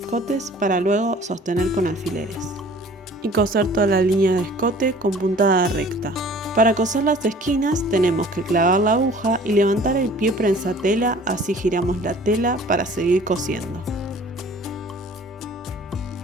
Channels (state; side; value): normal; both; correlation 0.50